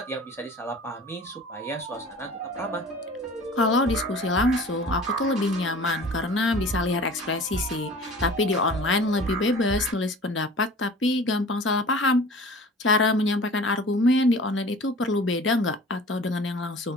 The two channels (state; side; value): normal; both; correlation 0.43